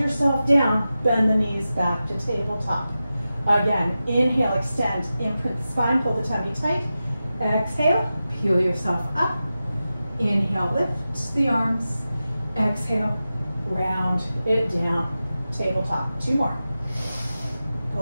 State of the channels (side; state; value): both; inverted; correlation -0.93